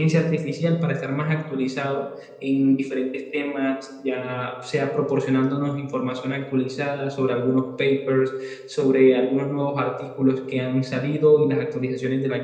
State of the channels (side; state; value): both; identical; correlation 1.00